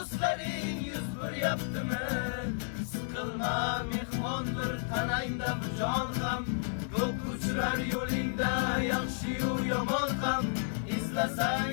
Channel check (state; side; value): silent; right; 56 dB below the other